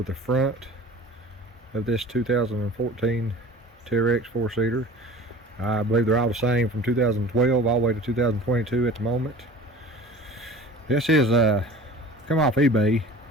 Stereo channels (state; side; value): normal; both; correlation 0.42